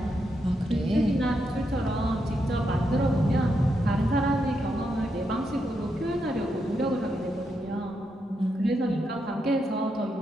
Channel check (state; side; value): normal; both; correlation 0.82